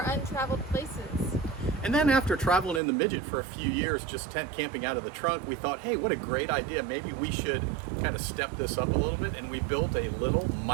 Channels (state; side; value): drops out; left; at 2.8 s